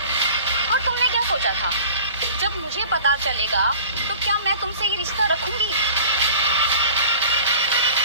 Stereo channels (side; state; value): both; inverted; correlation -0.43